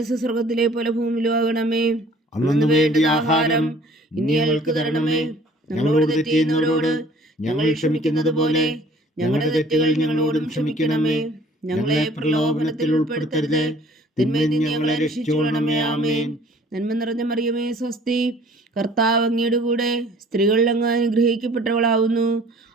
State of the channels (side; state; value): both; normal; correlation 0.53